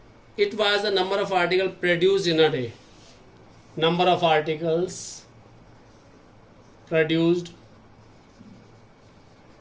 It was the number of articles produced in a day. Number of articles produced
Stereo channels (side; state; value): both; identical; correlation 1.00